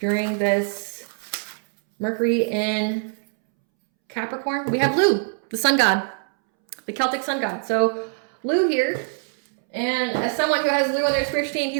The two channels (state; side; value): silent; left; 63 dB below the other